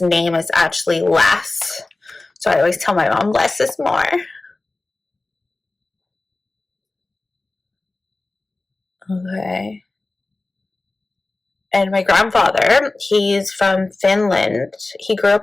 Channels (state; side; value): quieter; right; 3.1 dB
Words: name is actually Les. So I always tell my mom less is more. Okay. And my grandfather, he's from Finland. He grew